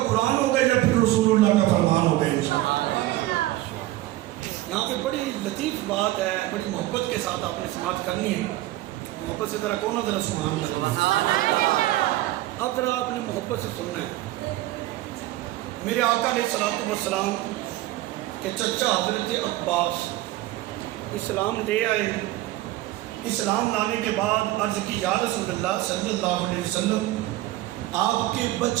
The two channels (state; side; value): quieter; left; 16.5 dB